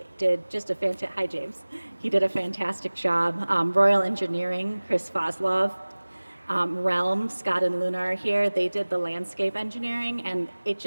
did just a fantastic, hi James. He did a fantastic job. Royal Engineering, Chris Foslov. Realm, Scott and Luna are here. They did the landscape engineering, and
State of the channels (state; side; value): inverted; both; correlation -1.00